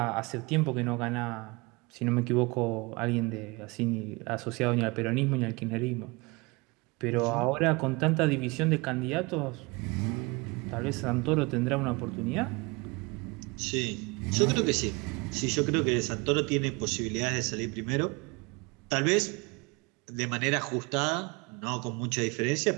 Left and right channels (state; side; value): quieter; left; 26.4 dB